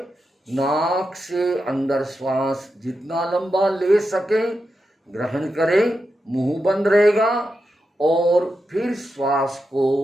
नाक से अंदर श्वास जितना लंबा ले सके ग्रहण करें, मुंह बंद रहेगा, और फिर श्वास को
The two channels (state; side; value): normal; both; correlation 0.88